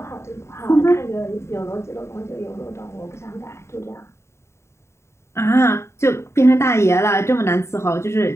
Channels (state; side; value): late; right; 0.13 ms